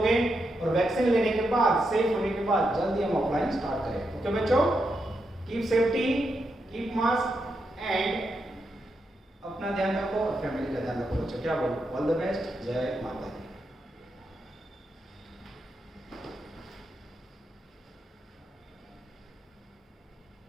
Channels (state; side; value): normal; both; correlation 0.84